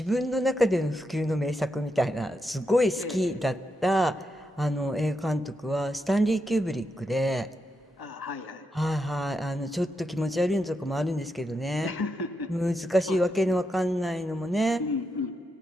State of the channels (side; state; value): both; normal; correlation 0.84